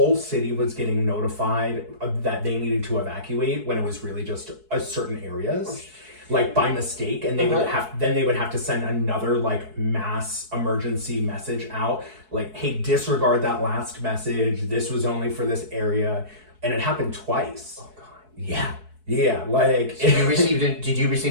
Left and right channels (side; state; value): left; late; 4.6 ms